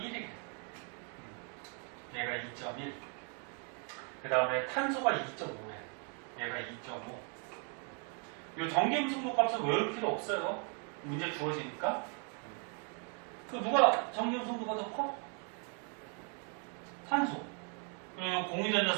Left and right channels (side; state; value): left; quieter; 39.8 dB